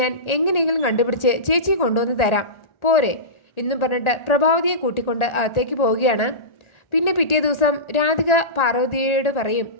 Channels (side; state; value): right; late; 1.4 ms